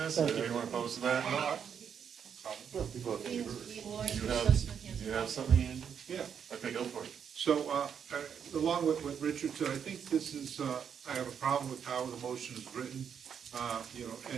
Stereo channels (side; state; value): left; quieter; 7.7 dB